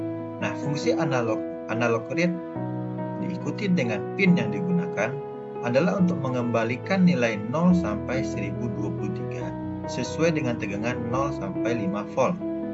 Nah, fungsi analog read diikuti dengan pin yang digunakan adalah untuk mengembalikan nilai 0 sampai 1023 sesuai dengan tegangan 0 sampai 5 volt.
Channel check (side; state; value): both; identical; correlation 1.00